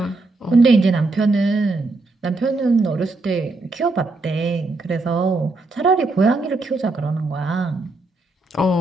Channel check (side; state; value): left; quieter; 3.2 dB